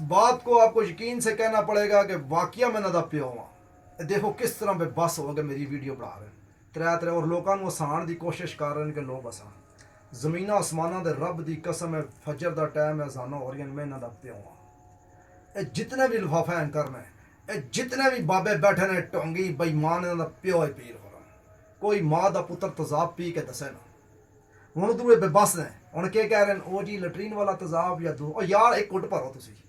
बात को आपको यकीन से कहना पड़ेगा कि वाकया में नदा प्यो हुआ देखो किस तरह पे बस हो गए मेरी वीडियो बना रहे त्रै त्रै और लोगों को हसाण की कोशिश कर रहे हैं कि लोग हसान जमीन आसमाना दे रब की कसम है फजर का टाइम है अजाना हो रही मैं नदा प्यो हुआ जितने भी लिफाफे एंकर ने जितने भी बाबे बैठे ने टोंगी बेईमान इन्हों का प्यो है पीर हो कोई माँ का पुत्र तेजाब पी के दसे ना हूँ दूए बेबस ने हूँ के कह रहे हैं ओ जी लटरीन वाला तेजाब या दो यार एक कुट भरो तुम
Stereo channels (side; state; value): both; identical; correlation 1.00